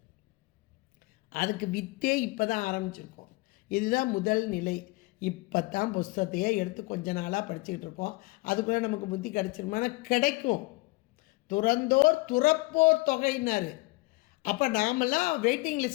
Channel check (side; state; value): right; quieter; 23.8 dB